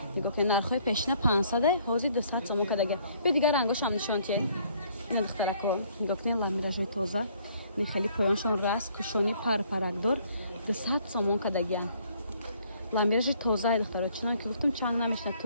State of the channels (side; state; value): both; inverted; correlation -0.63